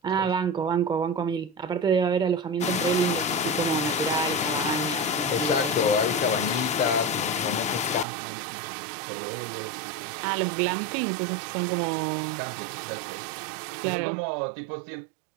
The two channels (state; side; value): drops out; left; at 8.1 s